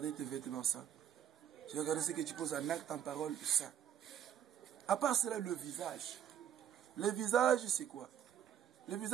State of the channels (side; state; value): left; quieter; 9.6 dB